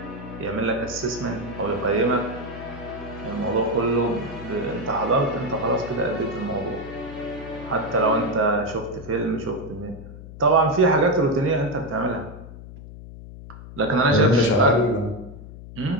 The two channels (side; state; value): left; noise; hum, 14 dB below the sound